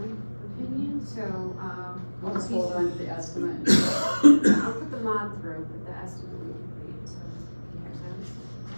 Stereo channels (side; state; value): both; inverted; correlation -1.00